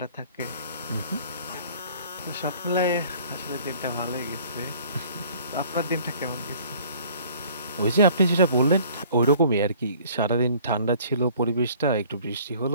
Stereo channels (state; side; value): inverted; both; correlation -0.53